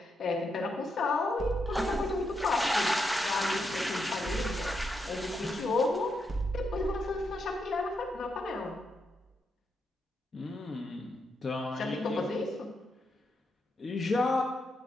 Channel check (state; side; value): normal; both; correlation 0.82